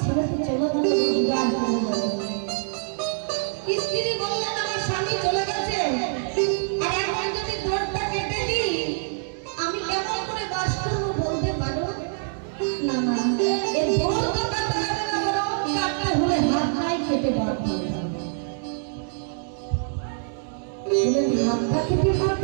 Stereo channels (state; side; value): silent; left; digital silence